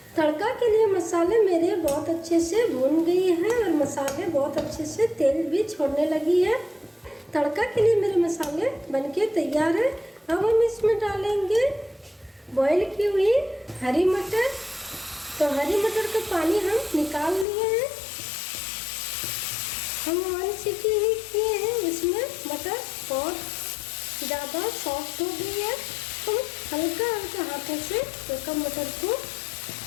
तड़का के लिए मसाले मेरे बहुत अच्छे से भून गई है और मसाले बहुत अच्छे से तेल भी छोड़ने लगी है। तड़का के लिए मेरे मसाले बनके तैयार है। अब हम इसमें डालेंगे बॉईल की हुई हरी मटर। तो हरी मटर का पानी हम निकाल लिए हैं। हम 1 सीटी ही किए हैं। इसमें मटर बहुत ज़्यादा सॉफ्ट हो गई है। तो हल्का हल्का हाथों से एक मटर को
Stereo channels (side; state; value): right; drops out; at 17.4 s